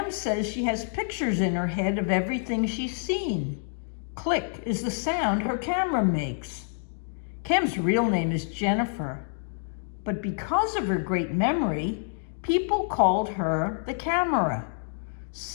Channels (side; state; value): right; silent; digital silence